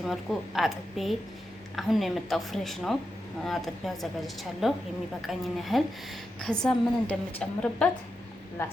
መልኩ አጥቤ አሁን ነው የመጣው፣ ፍሬሽ ነው። አጥቤ አዘጋጅቻለሁ የሚበቃኝን ያህል። ከዛ ምን እንደምጨምርበት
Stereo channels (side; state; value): both; normal; correlation 0.88